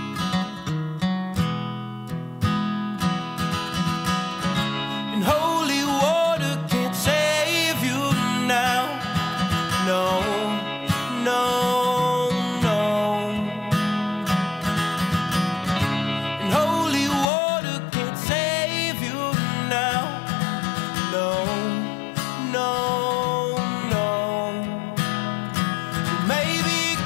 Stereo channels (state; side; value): drops out; right; at 17.2 s